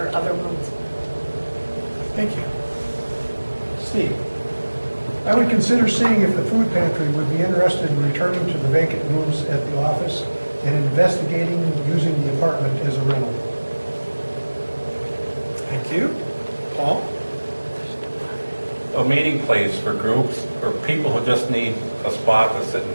other rooms. Thank you. Steve? I would consider seeing if the food pantry would be interested in returning to the vacant rooms at the office and investigating using the apartment as a rental. Thank you. Paul? A meeting place for groups or people who just need a spot to sit and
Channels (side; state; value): both; inverted; correlation -1.00